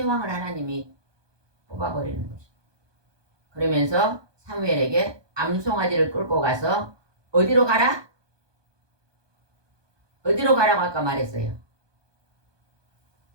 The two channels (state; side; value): late; left; 1.2 ms